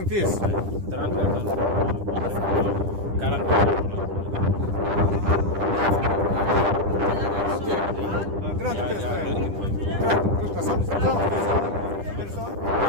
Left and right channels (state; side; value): late; left; 10 ms